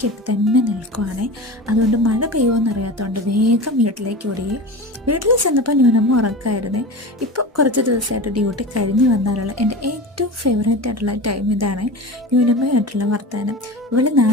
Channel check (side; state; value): both; normal; correlation 0.30